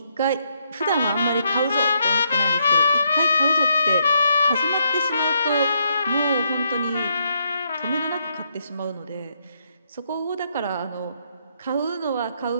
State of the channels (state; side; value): inverted; both; correlation -0.76